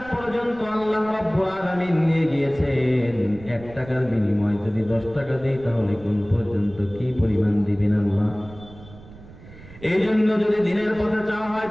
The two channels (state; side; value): noise; right; rumble, 19 dB below the sound